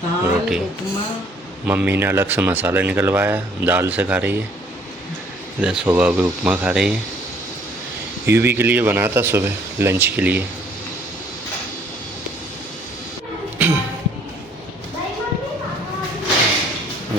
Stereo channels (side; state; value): both; normal; correlation 0.60